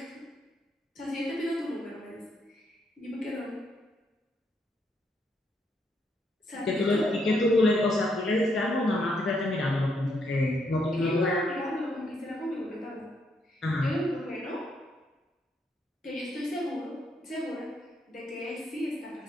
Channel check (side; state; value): both; normal; correlation 0.75